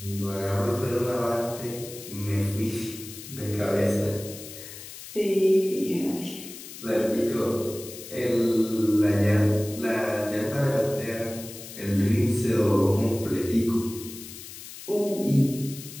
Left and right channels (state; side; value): noise; left; hiss, 13 dB below the sound